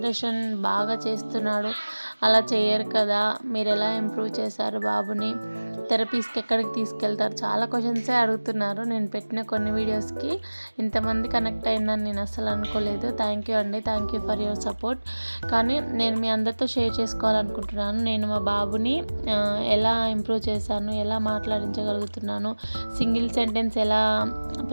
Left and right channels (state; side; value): inverted; both; correlation -1.00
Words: బాగా చేస్తున్నాడు, అలా చేయరు కదా, మీరు ఎలా ఇంప్రూవ్ చేశారు బాబుని, థెరపీస్కి ఎక్కడికి తీసుకెళ్తారు, చాలా క్వశ్చన్సే అడుగుతున్నారు. నేను పెట్టిన కొన్ని వీడియోస్కి ఇంతమంది కనెక్ట్ అయిందని నేను అస్సలు అనుకోలేదు. థ్యాంక్ యూ అండి, thank you for your support. కానీ నేను మీ అందరితో షేర్ చేసుకోవాలనుకుంటున్నాను. నేను మా బాబుని ఎలా ఇంప్రూవ్ చేశాను, ఎలా మాట్లాడించగలుగుతున్నాను, సింగిల్ సెంటెన్స్ ఎలా